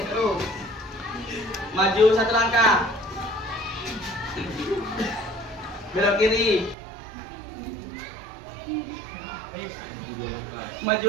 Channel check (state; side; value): drops out; left; at 6.8 s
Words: terus. Maju 1 langkah. Belok kiri.